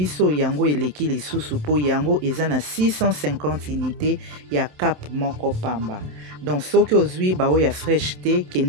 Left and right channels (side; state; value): left; late; 27 ms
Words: yango eleki lisusu mpo yango eza na 650 unité ya cap moko pamba donc soki ozwi baoyo ya fraîche te